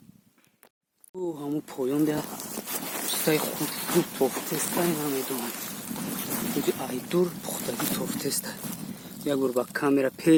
او همون پایان ده پیستای خود توفتسته نمیدونم بودی ایدور پختگی توفتسته. یک بار با کامera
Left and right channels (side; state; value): both; identical; correlation 1.00